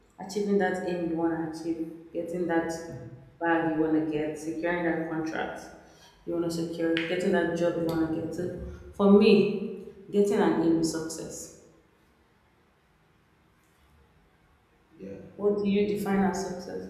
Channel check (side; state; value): both; identical; correlation 1.00